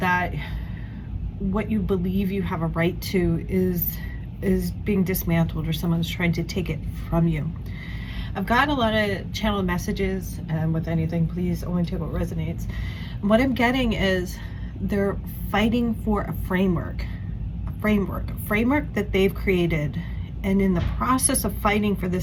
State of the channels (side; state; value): both; identical; correlation 1.00